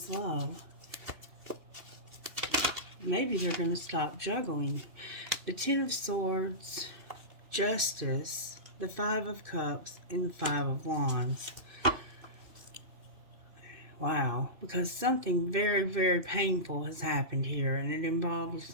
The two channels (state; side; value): late; left; 2.6 ms